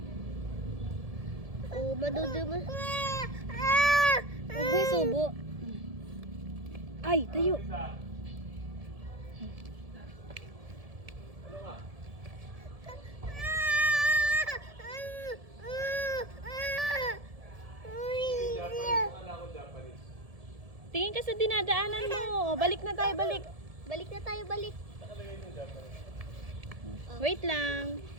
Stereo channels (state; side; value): late; left; 1.7 ms